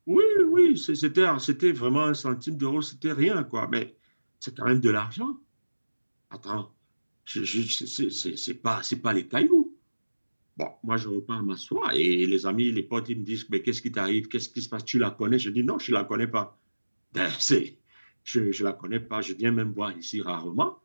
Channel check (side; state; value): both; inverted; correlation -1.00